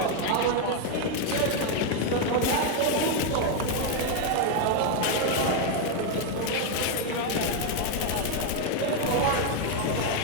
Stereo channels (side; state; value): both; different; correlation 0.01